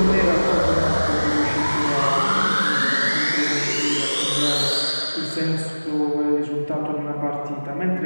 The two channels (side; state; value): both; inverted; correlation -1.00